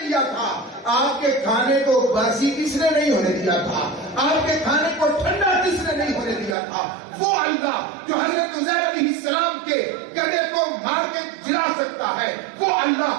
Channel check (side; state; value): left; drops out; at 6.6 s